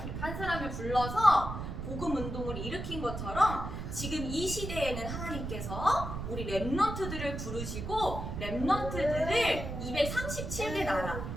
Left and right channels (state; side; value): noise; right; rumble, 6 dB below the sound